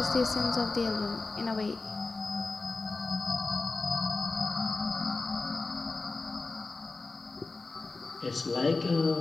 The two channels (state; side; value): quieter; right; 3.7 dB